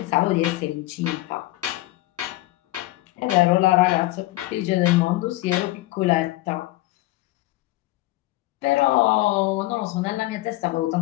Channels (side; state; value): right; quieter; 18.3 dB